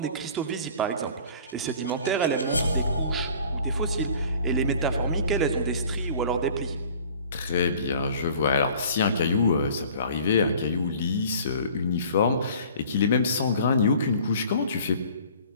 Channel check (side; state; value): both; inverted; correlation -0.48